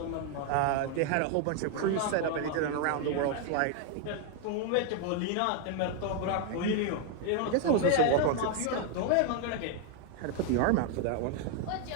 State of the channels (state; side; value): different; both; correlation 0.01